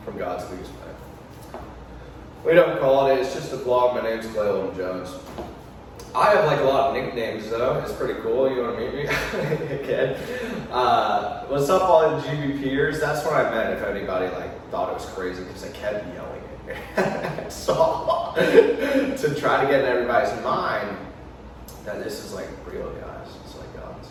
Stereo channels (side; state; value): both; identical; correlation 1.00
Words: from God's biggest plan. We don't call it, it's just a vlog. My name's Clayton Jones. I have like a lot of nicknames though. It's pretty cool. You want to meet me? Okay. What's up all the GBPers? That's what I meant if anybody like thought it was crazy because I kept yelling it. So to try to get in everybody's mind that this is like real, guys. It's like God's.